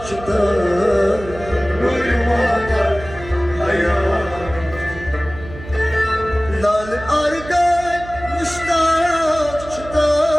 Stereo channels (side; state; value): right; noise; hum, 14 dB below the sound